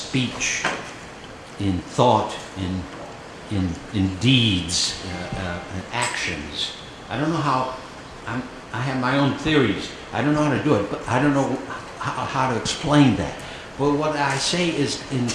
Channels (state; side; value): identical; both; correlation 1.00